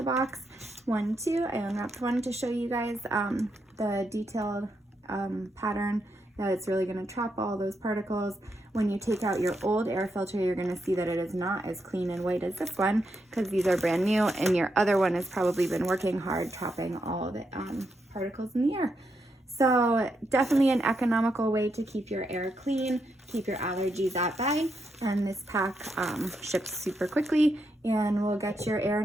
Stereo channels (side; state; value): both; normal; correlation 0.82